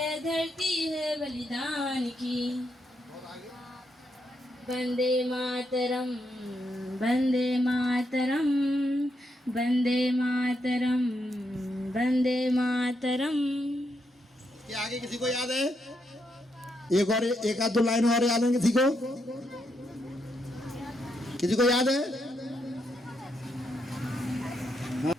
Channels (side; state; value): both; normal; correlation 0.80